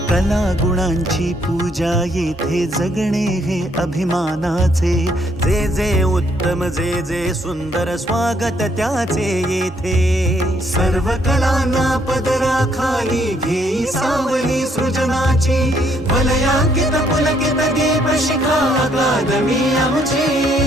कला गुणांची पूजा येथे जगणे हे अभिमानाचे जे जे उत्तम जे जे सुंदर स्वागत त्याचे येथे सर्व कलांना पदराखाली घेई सावली सृजनाची वलयांकित पुलकित दीपशिखा अकादमी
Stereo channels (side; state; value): both; normal; correlation 0.69